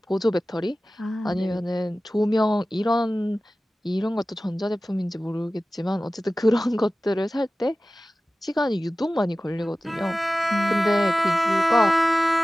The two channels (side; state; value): both; normal; correlation 0.96